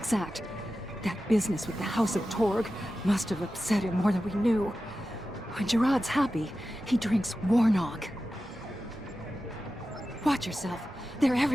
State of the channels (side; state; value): both; normal; correlation 0.93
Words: That business with the House of Torg must have upset him more than we knew. When Gerard's happy, he drinks Warnog. Watch yourself. They're